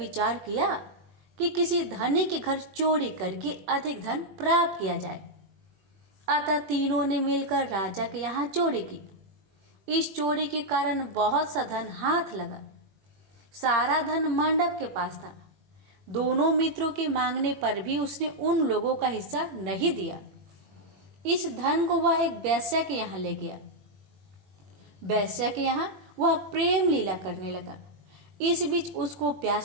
किया कि किसी धनी के घर चोरी करके अधिक धन प्राप्त किया जाए। अतः तीनों ने मिलकर राजा के यहाँ चोरी की। इस चोरी के कारण बहुत सा धन हाथ लगा। सारा धन मंडप के पास था। दोनों मित्रों के मांगने पर भी उसने उन लोगों का हिस्सा नहीं दिया। इस धन को वह एक वेश्या के यहाँ ले गया। वेश्या के यहाँ वह प्रेम लीला करने लगा। इस बीच उसको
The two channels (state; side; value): late; left; 21 ms